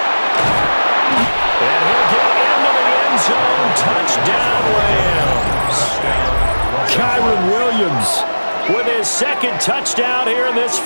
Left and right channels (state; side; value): inverted; both; correlation -1.00